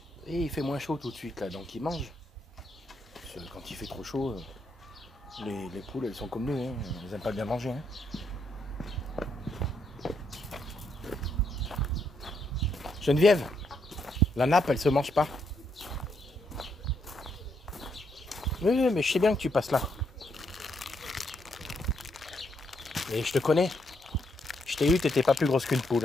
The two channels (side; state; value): both; normal; correlation 0.76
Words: Et il fait moins chaud tout de suite là, donc ils mangent. Parce que quand il fait trop chaud, les poules elles sont comme nous, hein. Elles aiment pas bien manger. Hein. Geneviève, la nappe elle se mange pas. Oui, mais je sais bien que tu passes là. Et je te connais. Je t'ai eu, t'étais pas plus grosse qu'une poule,